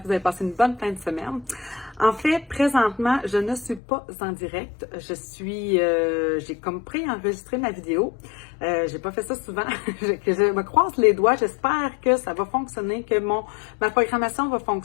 que vous avez passé une bonne fin de semaine. En fait, présentement, je ne suis pas en direct, j'ai comme préenregistré ma vidéo. J'ai pas fait ça souvent, que je me croise les doigts, j'espère que ça va fonctionner, que ma programmation va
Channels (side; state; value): right; drops out; at 3.8 s